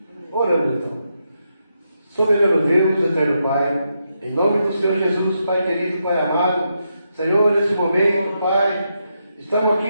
Oramos então. Soberano Deus, eterno Pai, em nome do Senhor Jesus, Pai querido, Pai amado, Senhor, nesse momento, Pai, estamos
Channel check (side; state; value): both; inverted; correlation -0.83